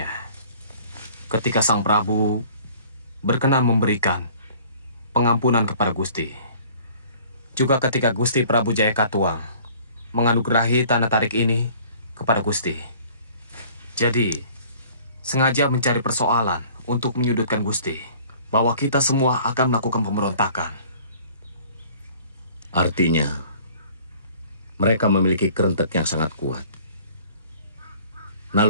ketika Sang Prabu berkenan memberikan pengampunan kepada Gusti. Juga ketika Gusti Prabu Jaya Katuang menganugerahi tanah tarik ini kepada Gusti. Jadi, sengaja mencari persoalan untuk menyudutkan Gusti, bahwa kita semua akan melakukan pemberontakan. Artinya, mereka memiliki kerentek yang sangat kuat.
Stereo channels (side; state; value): both; inverted; correlation -0.52